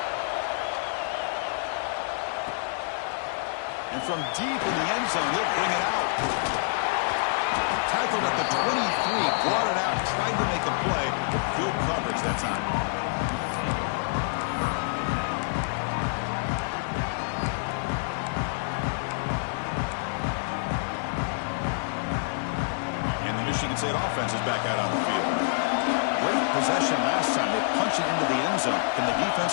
And from deep in the end zone, he'll bring it out. Tackled at the 23, brought it out, tried to make a play, but good coverage that time. Michigan State offense is back out on the field. Great possession last time. They punch it into the end zone. Can the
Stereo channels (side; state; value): right; silent; digital silence